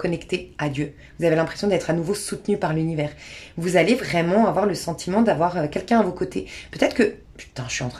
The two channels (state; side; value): identical; both; correlation 1.00